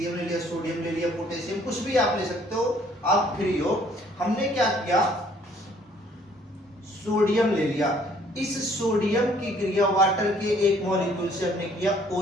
ले लिया, सोडियम ले लिया, पोटेशियम, कुछ भी आप ले सकते हो, आप फ्री हो। हमने क्या किया, सोडियम ले लिया। इस सोडियम की क्रिया वाटर के एक मॉलिक्यूल से हमने किया,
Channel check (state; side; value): normal; both; correlation 0.61